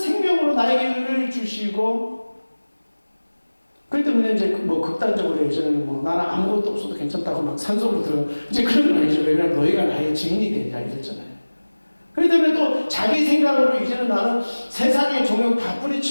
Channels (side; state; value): both; inverted; correlation -1.00